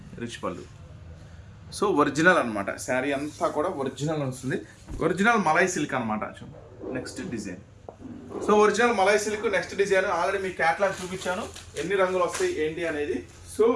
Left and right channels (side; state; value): both; identical; correlation 1.00